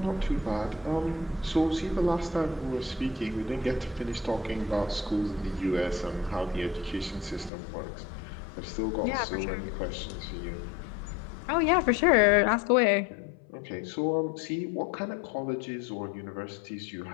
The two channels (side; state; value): right; drops out; at 7.5 s